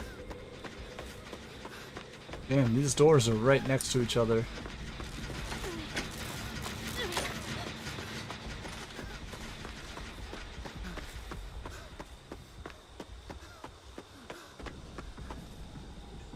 Damn, these doors are right next to each other.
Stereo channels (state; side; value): identical; both; correlation 1.00